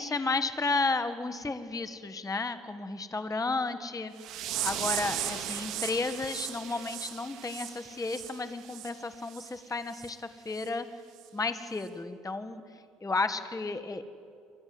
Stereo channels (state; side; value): normal; both; correlation 0.57